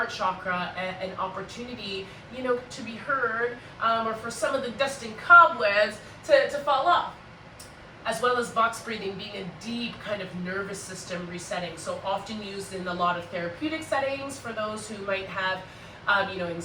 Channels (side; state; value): both; identical; correlation 1.00